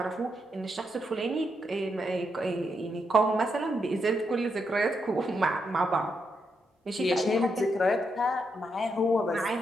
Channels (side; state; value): both; normal; correlation 0.81